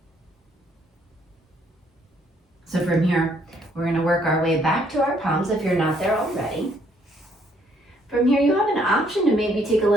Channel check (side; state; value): both; normal; correlation 0.67